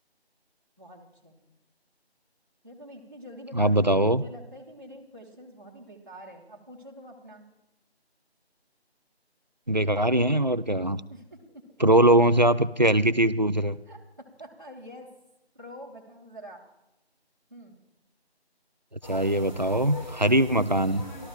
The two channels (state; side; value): normal; both; correlation -0.19